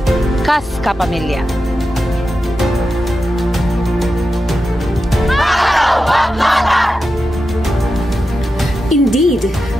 kas kapamilya. Indeed,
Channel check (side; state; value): both; normal; correlation 0.90